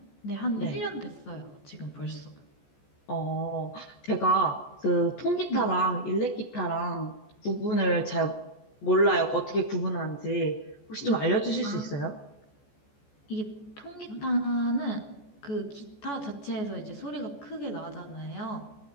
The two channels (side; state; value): right; late; 14 ms